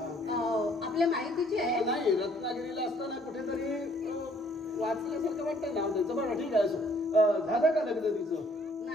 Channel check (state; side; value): normal; both; correlation 0.61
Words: आपल्या माहितीची आहे. नाही, रत्नागिरीला असताना कुठेतरी वाचल्यासारखं वाटतं नाव त्याचं. बरं ठीक आहे, झालं का लग्न तिचं?